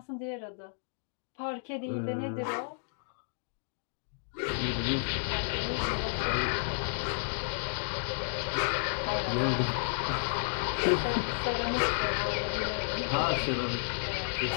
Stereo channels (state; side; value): silent; right; digital silence